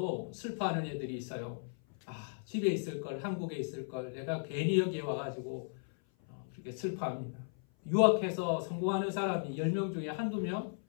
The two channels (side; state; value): right; silent; 54 dB below the other